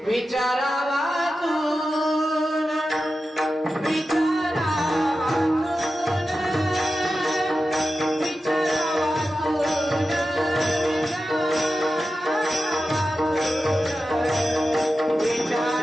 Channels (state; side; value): normal; both; correlation 0.92